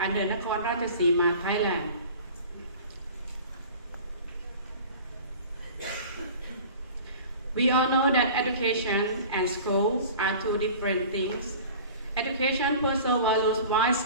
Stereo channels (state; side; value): inverted; both; correlation -0.41